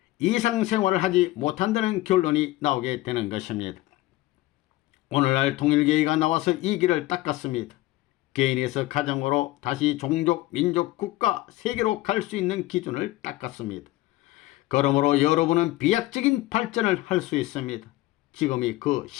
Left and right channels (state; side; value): quieter; right; 17.6 dB